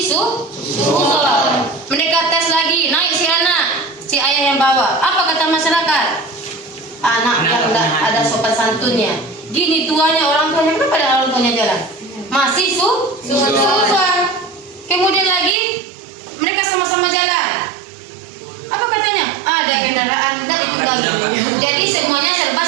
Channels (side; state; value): left; drops out; at 15.6 s